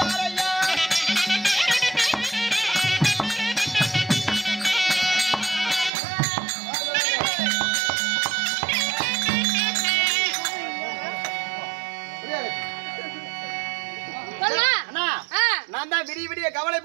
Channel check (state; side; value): drops out; left; at 5.9 s